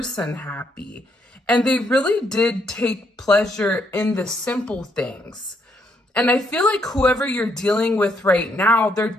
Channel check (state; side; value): normal; both; correlation 0.73